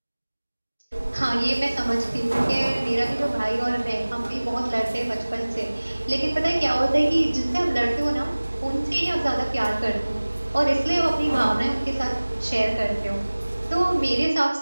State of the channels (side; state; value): both; inverted; correlation -1.00